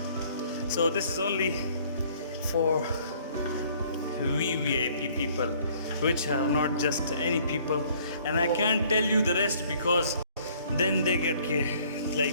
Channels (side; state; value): both; inverted; correlation -0.59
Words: So this is only for VIP people, which are not just any people, and I can't tell you the rest because then they get